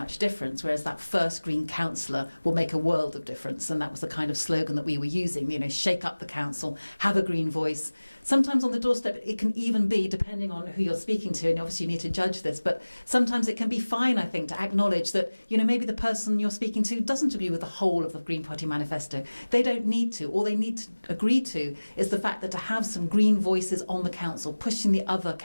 difference, whereas that first Green councillor will make a world of difference. And that was the kind of slogan that we were using, shake up the council, have a Green voice. Sometimes on the doorstep, it can even be, depending on who you're speaking to, and obviously you need to judge this, but sometimes it can be fine, I think, to acknowledge that, maybe the person you're speaking to doesn't agree with the whole of the Green Party manifesto. They don't need to. All they need to agree to is the fact that to have some Green voices on the council, pushing the other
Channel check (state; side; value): inverted; both; correlation -1.00